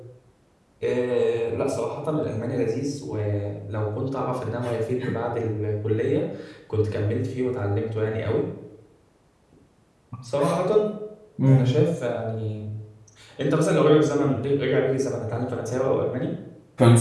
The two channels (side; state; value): both; identical; correlation 1.00